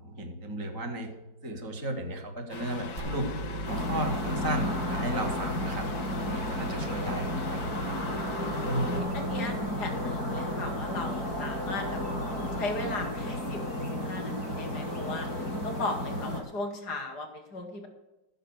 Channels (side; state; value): right; late; 4.6 ms